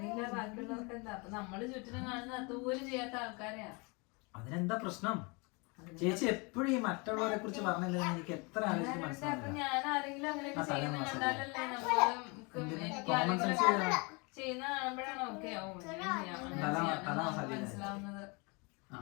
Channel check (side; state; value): right; quieter; 29.8 dB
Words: ബാക്കിയുള്ളവർക്ക് എന്താ. അപ്പൊ നമ്മള് ചുറ്റിനും കാണുന്ന അതുപോലും ചെയ്യാത്ത ആൾക്കാരെയാ. അതിനെന്താ പ്രശ്നം? ചേച്ചി എപ്പോഴും ഈ മറ്റുള്ളവരെ കുറിച്ച് പറഞ്ഞില്ല, എനിക്ക് എത്ര ആലോചിച്ച് മനസ്സിലാവില്ല. ഞാൻ ആരെങ്കിലും അങ്ങനെയൊക്കെ ചെയ്യുന്ന കണ്ടാലല്ലേ ചെയ്യുന്ന കാണുമ്പോഴാണ് ഓക്കെ മനസ്സിലാവുന്നത്.